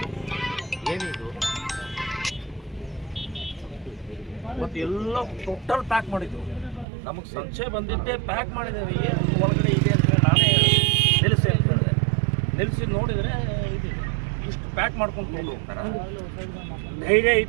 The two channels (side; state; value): left; drops out; at 6.9 s